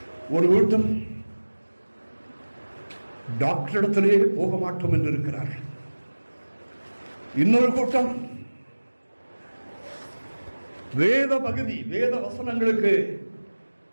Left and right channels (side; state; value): both; inverted; correlation -1.00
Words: ஒரு கூட்டம் டாக்டரிடத்திலே போக மாட்டோம் என்று இருக்கிறார்கள். இன்னொரு கூட்டம் வேத பகுதி, வேத வசனங்களுக்கு